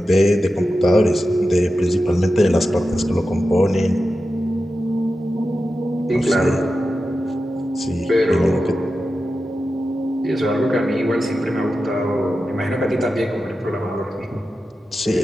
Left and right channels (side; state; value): both; normal; correlation 0.92